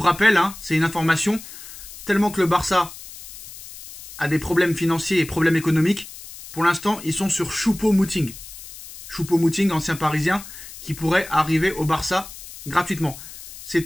rappel, c'est une information, tellement que le Barça a des problèmes financiers et problèmes économiques. Pour l'instant, ils sont sur Choupo-Moting. Choupo-Moting, ancien parisien, qui pourrait arriver au Barça gratuitement. C'est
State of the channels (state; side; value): noise; left; hiss, 15 dB below the sound